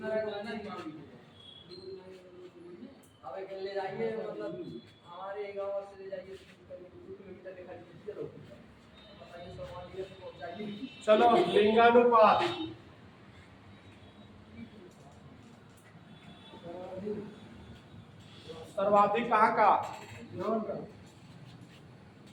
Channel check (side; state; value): both; identical; correlation 1.00